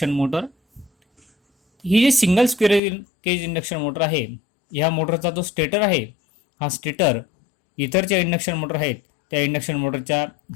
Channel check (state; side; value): drops out; right; at 2.8 s